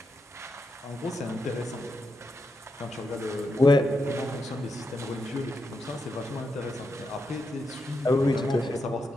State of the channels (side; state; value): both; normal; correlation 0.85